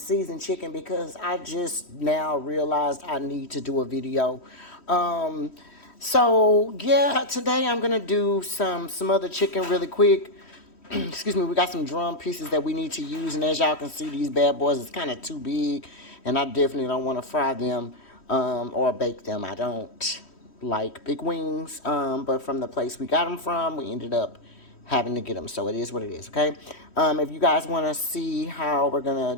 chicken because I just now realized I need to do a video. Um, so yeah, today I'm gonna do some other chicken really quick. Excuse me, we got some drum pieces that we need to use, and as y'all can see, these bad boys is kind of too big, and I definitely don't want to fry them or bake them. I don't like big wings, but from the place we got them from, we ended up having to get them. So it is what it is, okay? If you guys want to see how we're going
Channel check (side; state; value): right; late; 3.1 ms